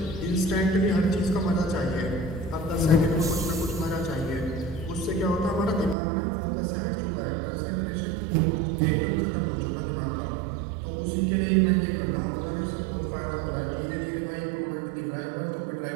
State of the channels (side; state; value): left; drops out; at 6.0 s